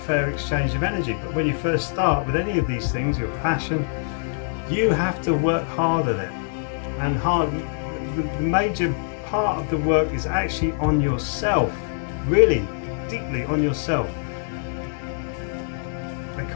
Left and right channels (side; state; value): right; silent; digital silence